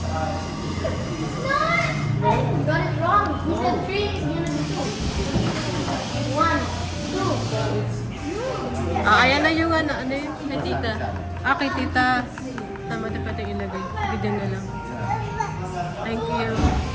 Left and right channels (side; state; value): both; identical; correlation 1.00